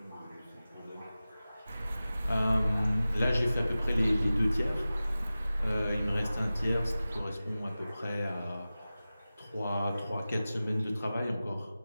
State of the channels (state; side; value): inverted; both; correlation -0.96